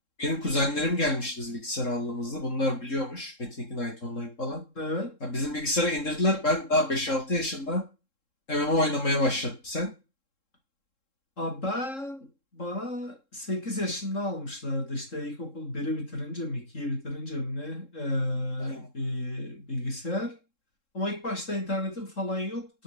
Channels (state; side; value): late; right; 3.7 ms